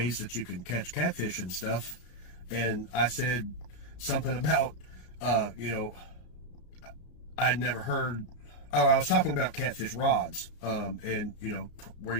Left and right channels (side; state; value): right; late; 33 ms